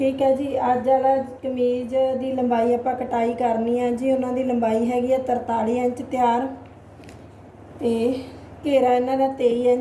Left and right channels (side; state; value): both; identical; correlation 1.00